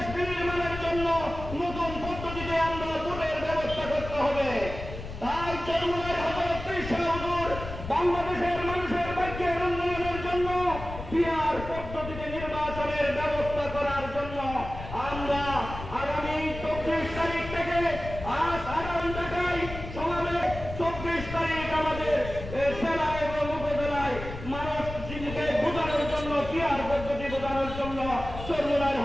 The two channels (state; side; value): noise; left; rumble, 10 dB below the sound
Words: বিনির্মাণের জন্য নতুন পদ্ধতিতে আমরা ভোটের ব্যবস্থা করতে হবে। তাই চরমুনায় হযরত ঈসা হুজুর বাংলাদেশের মানুষের ভাগ্যের উন্নয়নের জন্য পিআর পদ্ধতিতে নির্বাচনের ব্যবস্থা করার জন্য আমরা আগামী 24 তারিখ থেকে আজ আগামী ঢাকায় সমাবেশ 24 তারিখ আমাদের জেলা এবং উপজেলায় মানুষ জীবনকে বোঝানোর জন্য পিআর পদ্ধতি বোঝানোর জন্য চরমুনায়